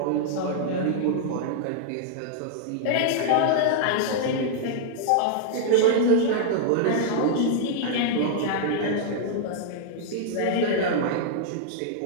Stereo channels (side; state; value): both; different; correlation -0.01